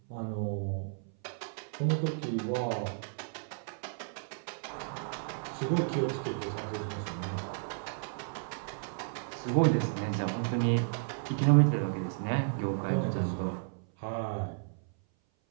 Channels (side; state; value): left; silent; 56 dB below the other